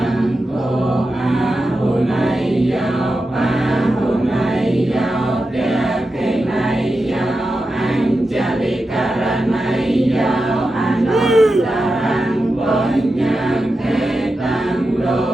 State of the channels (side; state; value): both; normal; correlation 0.90